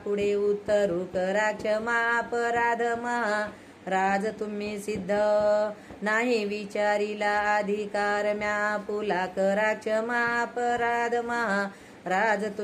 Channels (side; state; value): both; identical; correlation 1.00